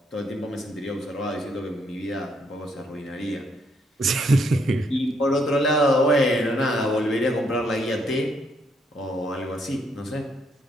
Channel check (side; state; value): both; normal; correlation 0.73